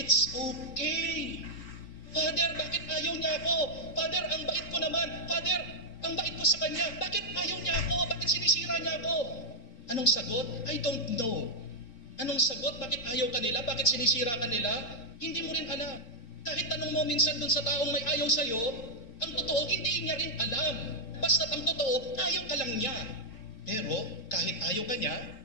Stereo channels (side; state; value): right; late; 4.4 ms